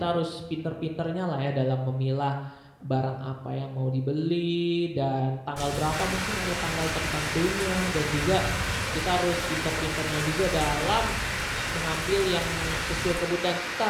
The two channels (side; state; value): both; identical; correlation 1.00